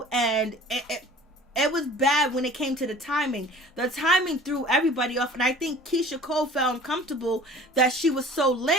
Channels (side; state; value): both; normal; correlation 0.46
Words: and it was bad when it came to the timing. The timing threw everybody off, and I think Keyshia Cole felt uncomfortable that she was so